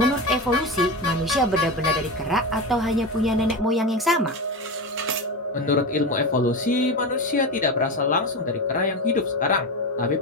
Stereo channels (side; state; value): both; normal; correlation 0.21